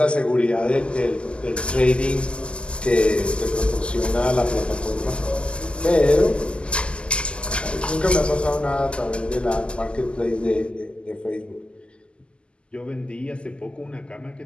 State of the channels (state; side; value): late; right; 0.051 ms